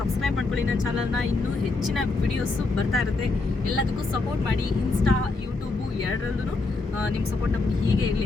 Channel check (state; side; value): quieter; right; 3.6 dB